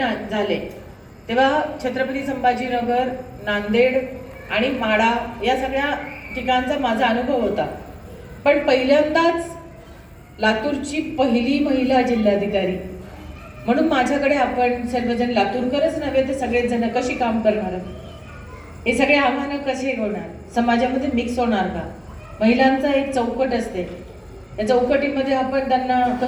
झाले तेव्हा छत्रपती संभाजीनगर, नांदेड आणि माढा या सगळ्या ठिकाणचा माझा अनुभव होता. पण पहिल्यांदाच लातूरची पहिली महिला जिल्हाधिकारी म्हणून माझ्याकडे आपण सर्वजण लातूरकरच नव्हे तर सगळेच जण कशी काम करणार, हे सगळे आव्हानं कसे होणार, समाजामध्ये मिक्स होणार का, महिलांचा एक चौकट असते, या चौकटीमध्ये आपण त्यांना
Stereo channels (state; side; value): identical; both; correlation 1.00